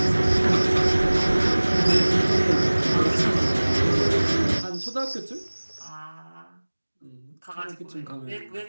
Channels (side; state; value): both; inverted; correlation -1.00